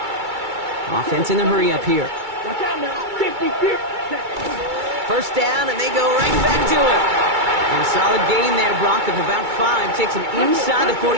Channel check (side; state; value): left; late; 2.3 ms